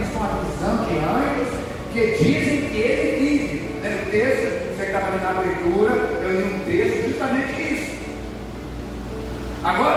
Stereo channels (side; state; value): both; identical; correlation 1.00